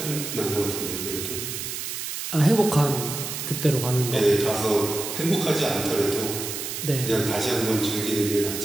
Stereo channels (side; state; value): right; noise; hiss, 5 dB below the sound